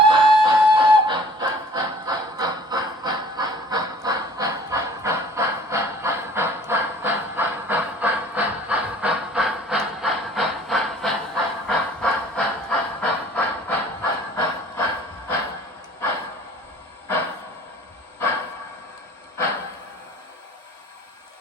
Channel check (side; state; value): both; normal; correlation 0.51